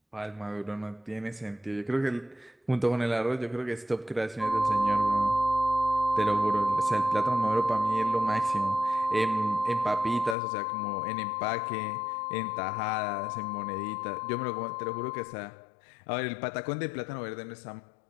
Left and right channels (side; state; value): right; drops out; at 10.4 s